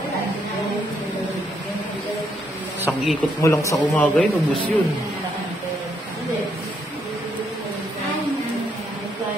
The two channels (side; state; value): both; normal; correlation 0.74